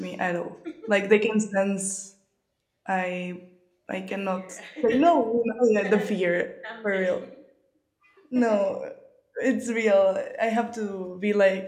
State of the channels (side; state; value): both; identical; correlation 1.00